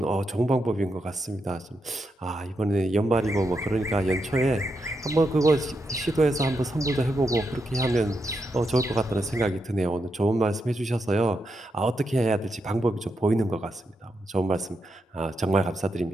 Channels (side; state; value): both; normal; correlation 0.84